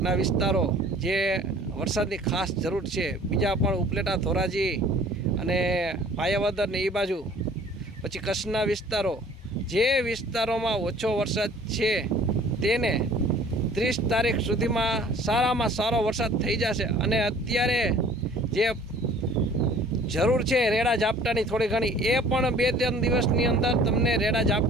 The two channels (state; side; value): normal; both; correlation 0.51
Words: વિસ્તારો જે વરસાદની ખાસ જરૂર છે, બીજા પણ ઉપલેટા, ધોરાજી અને પાયાવદર ને એ બાજુ, પછી કચ્છના વિસ્તારો, જે વિસ્તારોમાં ઓછો વરસાદ છે તેને 30 તારીખ સુધીમાં સારામાં સારો વરસાદ થઈ જશે। અને અત્યારે જે જરૂર છે રેડા ઝાપટાની થોડી ઘણી, એ પણ 2-3 દિવસની અંદર તમને રેડા